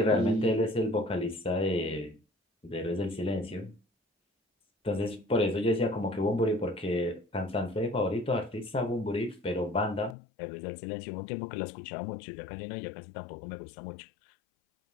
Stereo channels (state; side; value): drops out; right; at 10.2 s